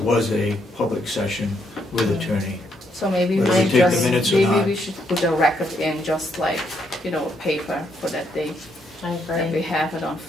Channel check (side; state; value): both; normal; correlation 0.75